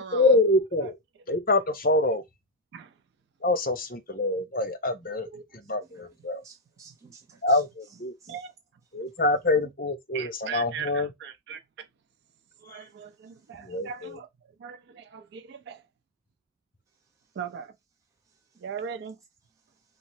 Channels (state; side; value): normal; both; correlation -0.03